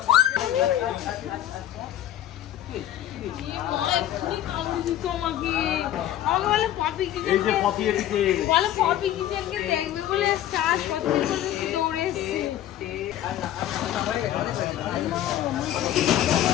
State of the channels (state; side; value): quieter; right; 12.2 dB